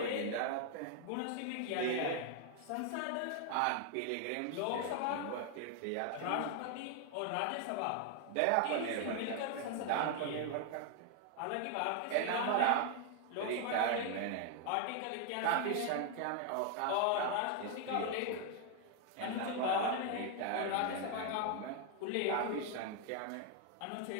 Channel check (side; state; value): both; different; correlation 0.00